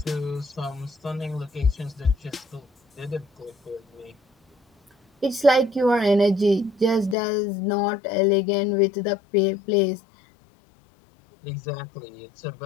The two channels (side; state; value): right; drops out; at 7.2 s